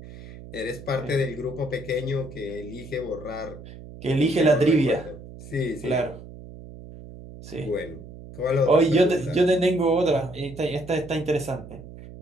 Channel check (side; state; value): right; noise; hum, 15 dB below the sound